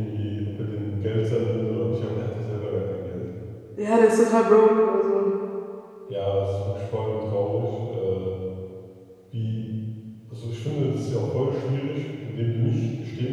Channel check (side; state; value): both; identical; correlation 1.00